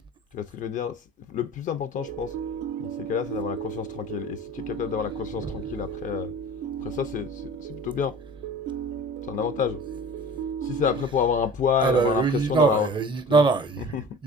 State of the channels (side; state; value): both; normal; correlation 0.41